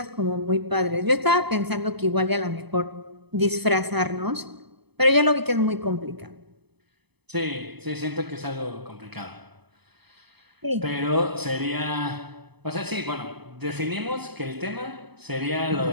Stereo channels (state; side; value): late; left; 0.98 ms